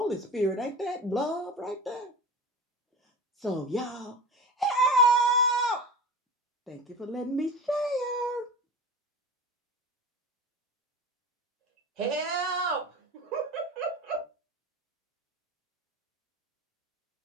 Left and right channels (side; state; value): both; normal; correlation 0.31